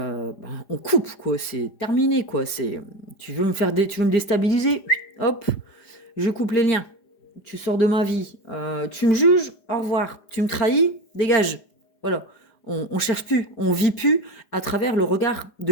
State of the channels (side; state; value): right; late; 4.9 ms